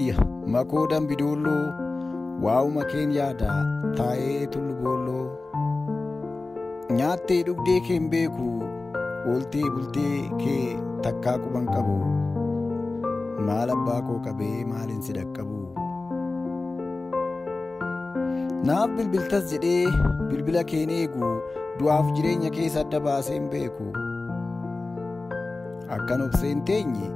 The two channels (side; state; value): right; quieter; 3.4 dB